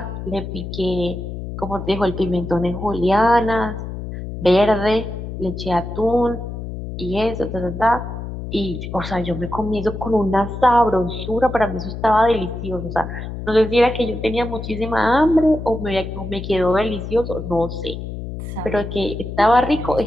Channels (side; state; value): left; noise; hum, 8 dB below the sound